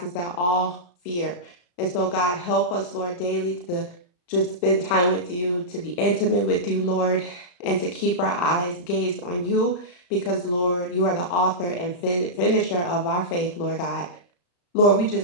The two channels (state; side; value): late; right; 34 ms